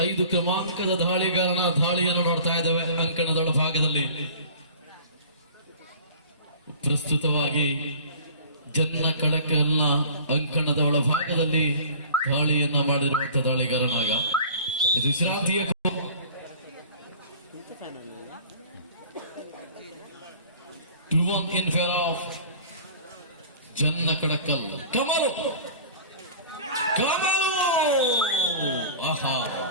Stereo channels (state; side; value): inverted; both; correlation -0.43